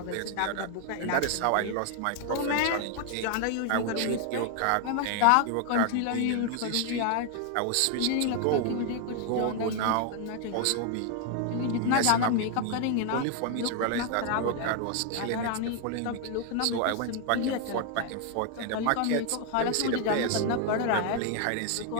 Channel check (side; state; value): both; different; correlation 0.00